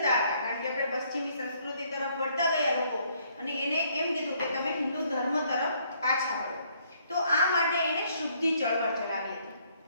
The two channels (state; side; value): inverted; both; correlation -0.67